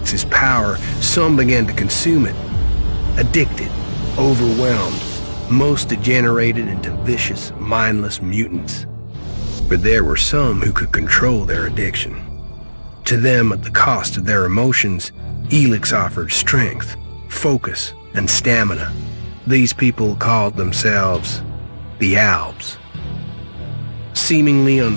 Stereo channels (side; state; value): both; inverted; correlation -1.00